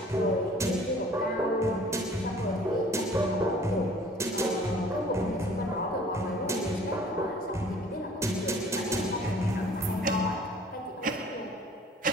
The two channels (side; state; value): both; normal; correlation 0.52